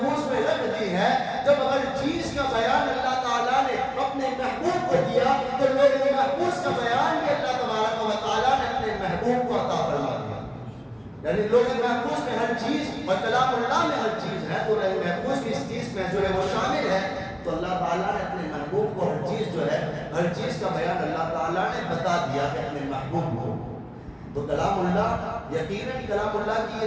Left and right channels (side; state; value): both; identical; correlation 1.00